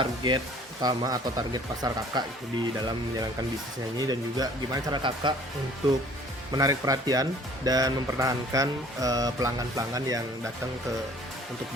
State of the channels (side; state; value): both; normal; correlation 0.53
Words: utama atau target pasar kakak itu di dalam menjalankan bisnisnya ini, dan juga gimana cara kakak untuk menarik perhatian dan mempertahankan pelanggan-pelanggan yang datang untuk